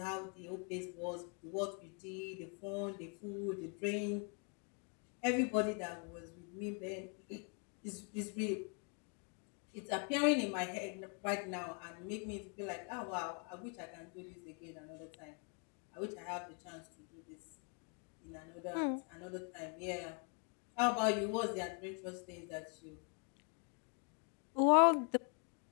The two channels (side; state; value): right; quieter; 37.4 dB